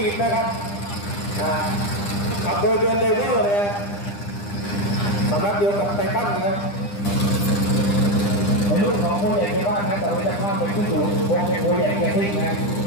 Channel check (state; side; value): late; right; 9.9 ms